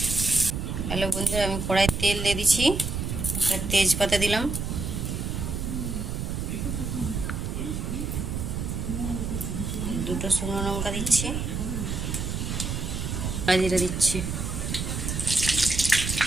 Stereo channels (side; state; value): right; noise; rumble, 3 dB below the sound